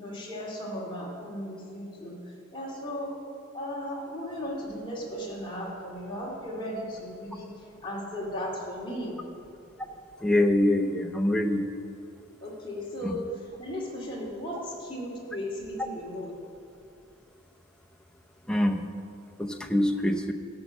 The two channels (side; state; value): both; normal; correlation 0.75